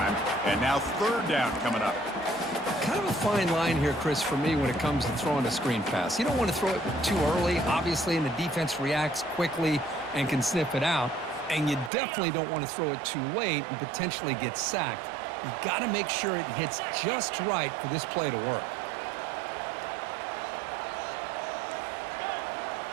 And now third down coming up. Kind of a fine line here, Chris, for me when it comes to throwing a screen pass. You don't want to throw it too early, obviously, and the defense reacts quickly and can sniff it out. And you definitely don't want to throw it too late and potentially get sacked. You got to make sure it hits just right for this play to work.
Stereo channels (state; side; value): drops out; left; at 11.9 s